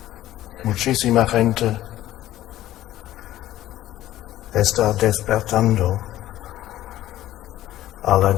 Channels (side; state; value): right; quieter; 14.2 dB